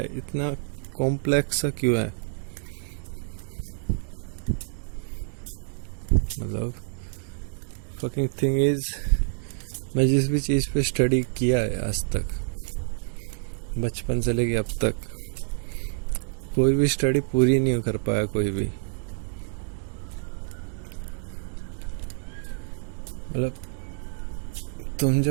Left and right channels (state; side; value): silent; left; digital silence